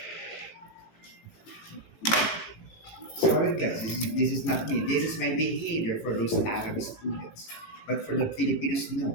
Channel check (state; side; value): late; right; 18 ms